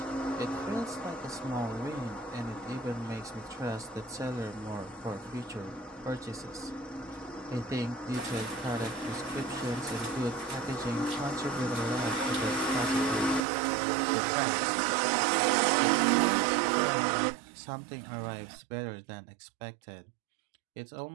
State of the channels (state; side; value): drops out; left; at 13.4 s